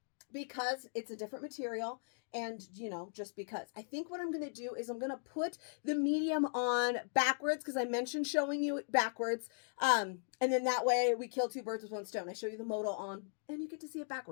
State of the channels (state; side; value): silent; right; digital silence